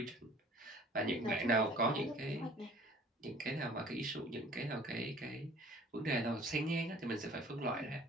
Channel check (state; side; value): normal; both; correlation 0.51